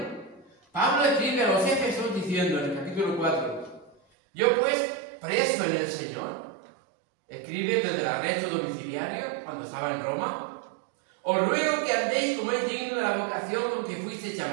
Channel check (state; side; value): drops out; left; at 4.0 s